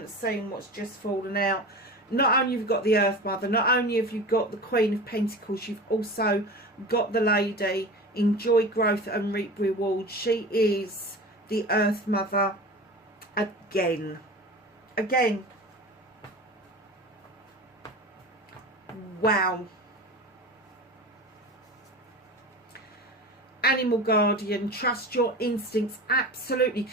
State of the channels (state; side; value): normal; both; correlation 0.32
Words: seen what's just fallen out. Not only have you got the Earth Mother, not only have you got the Queen of Pentacles, you've also got the lady, enjoy growth and reap reward. She is the Earth Mother again. Again. Wow. Animal guardian, trust your instincts. Absolutely.